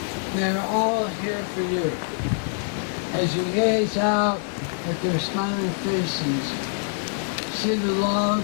They are all here for you. As you gaze out at their smiling faces, see the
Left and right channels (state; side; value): silent; right; digital silence